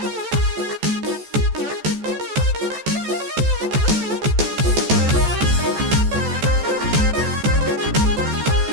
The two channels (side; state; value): left; late; 14 ms